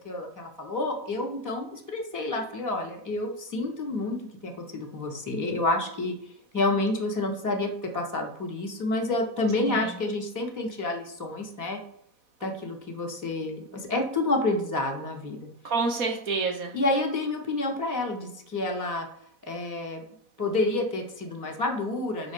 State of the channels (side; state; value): left; late; 4.1 ms